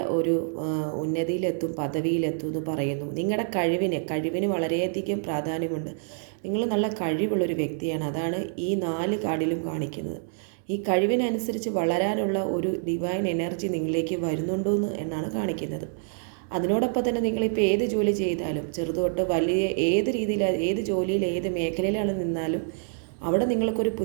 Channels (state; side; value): silent; left; digital silence